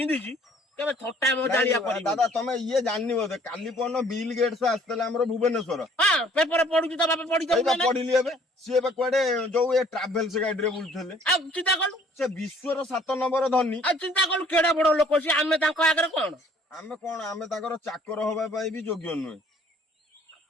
କେବେ ଥଟ୍ଟା ମଜାଳିଆ କରିବନି। ଦାଦା ତମେ ଇଏ ଜାଣିନି ବୋଧେ, କାଲି ପରଦିନ ବିଲ୍ ଗେଟ୍ସ ଆସିଥିଲେ ଆମର ଭୁବନେଶ୍ୱର। ହଁ, ପେପର ପଢୁଛି ତ ବାପା, ପଢିଲି ଏବେ। ସିଏ ଏବେ କୁଆଡେ ଯୋଉ ଏ ଟ୍ରାଭେଲ୍ସ ଗାଡିରେ ବୁଲୁଥିଲେ। ଆଉ ଚିନ୍ତା କଲୁ, ସେ ବିଶ୍ୱର 7 ନମ୍ବର ଧନୀ। ଆଉ ଚିନ୍ତା କଲୁ କେଡେ ବଡ ଲୋକ ସିଏ। ଆମେ ତାଙ୍କ ଆଗରେ କଣ? ଆମେ ତାଙ୍କର ଚାକର ହବା ପାଇଁ ବି ଯୋଗ୍ୟ ନୁହେଁ।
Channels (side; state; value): both; normal; correlation 0.57